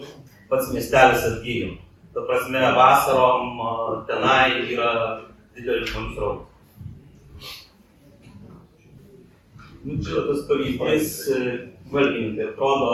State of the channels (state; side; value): identical; both; correlation 1.00